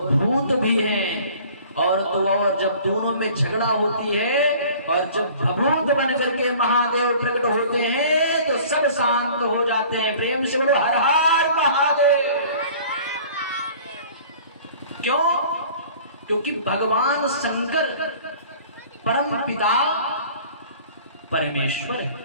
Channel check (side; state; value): both; inverted; correlation -0.48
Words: भी हैं। और तो और जब दोनों में झगड़ा होती है और जब भभूत बन करके महादेव प्रकट होते हैं तो सब शांत हो जाते हैं। प्रेम से बोलो हर हर महादेव। क्यों? क्योंकि भगवान शंकर परम पिता परमेश्वर